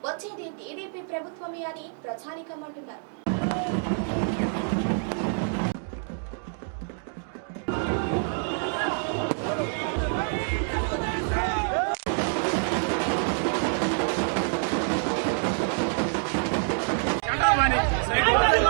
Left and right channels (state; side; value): silent; left; 56 dB below the other